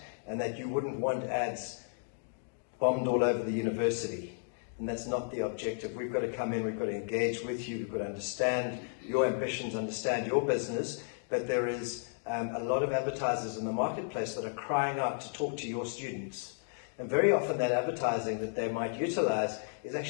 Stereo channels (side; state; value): right; silent; digital silence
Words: and that you wouldn't want ads bombed all over the university. And that's not the objective. We've got to come in, we've got to engage with you, we've got to understand your ambitions, understand your business, but there is a lot of advertisers in the marketplace that are crying out to talk to your students. And very often that advertising that they might utilize is